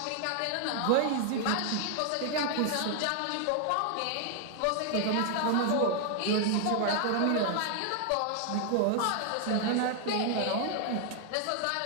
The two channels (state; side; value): different; both; correlation 0.00